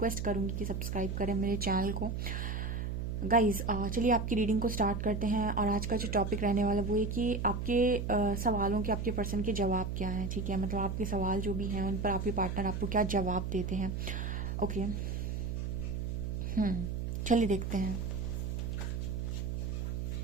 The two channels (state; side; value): noise; right; hum, 3 dB below the sound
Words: करूंगी कि सब्सक्राइब करें मेरे चैनल को। गाइस चलिए आपकी रीडिंग को स्टार्ट करते हैं। और आज का जो टॉपिक रहने वाला वो है कि आपके सवालों के, आपके पर्सन के जवाब क्या हैं। ठीक है, मतलब आपके सवाल जो भी हैं उन पर आपके पार्टनर आपको क्या जवाब देते हैं। ओके, चलिए देखते हैं।